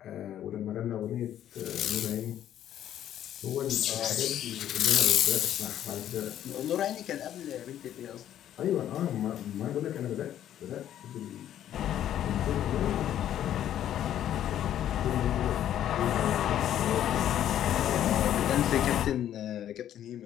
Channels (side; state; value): right; quieter; 11.1 dB